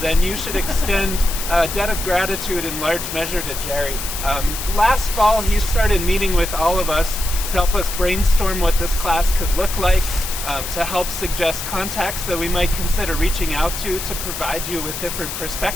then you should extend a debt of gratitude in large measure to Jerry. Last fall, he started meeting with all of us to help us brainstorm what this class could look like, to help suggest contacts that we might consider reaching out to provide you with different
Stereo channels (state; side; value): noise; left; hiss, 6 dB below the sound